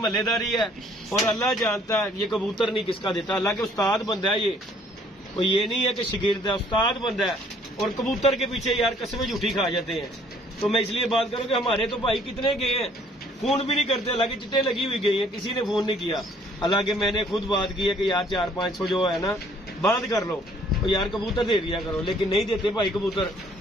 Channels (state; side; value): normal; both; correlation 0.60